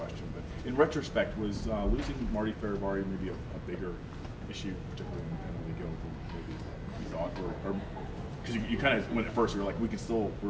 but in retrospect, was losing Marty Fehervary maybe a bigger issue, particularly in the penalty kill, than maybe you thought, or because you kind of went at first, you were like,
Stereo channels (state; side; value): identical; both; correlation 1.00